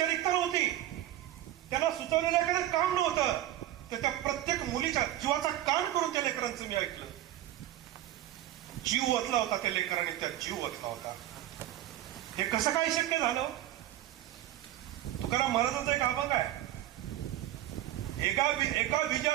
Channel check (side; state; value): left; quieter; 13.3 dB